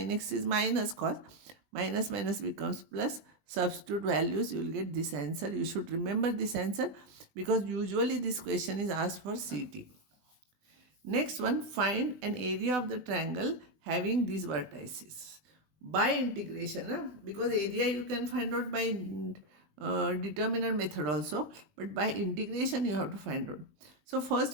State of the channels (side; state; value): left; late; 20 ms